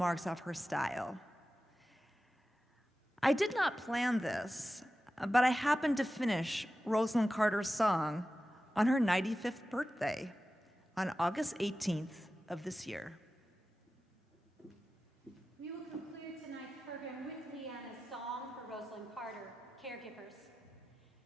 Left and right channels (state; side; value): normal; both; correlation 0.94